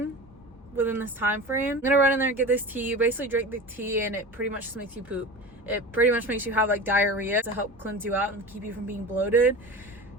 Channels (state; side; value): normal; both; correlation 0.32